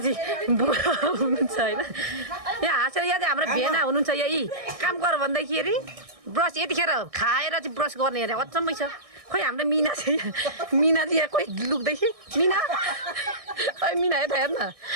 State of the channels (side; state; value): left; late; 1.6 ms